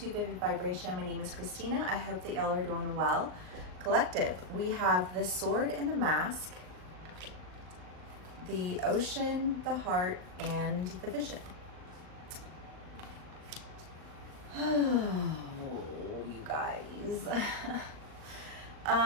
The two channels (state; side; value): late; left; 38 ms